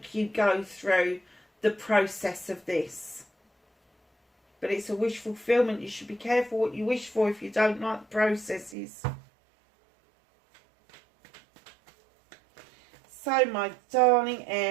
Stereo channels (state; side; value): drops out; left; at 8.8 s